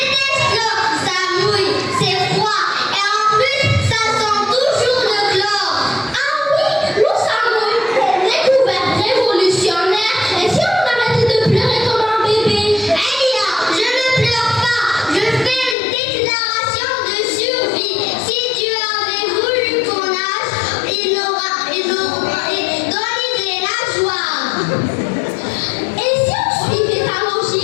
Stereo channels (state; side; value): drops out; right; at 15.8 s